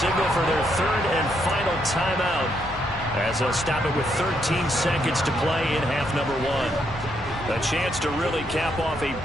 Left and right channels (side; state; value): left; noise; hum, 21 dB below the sound